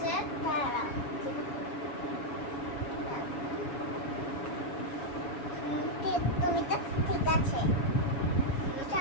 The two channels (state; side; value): late; right; 7.1 ms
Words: তুমি তো ঠিক আছে, এটা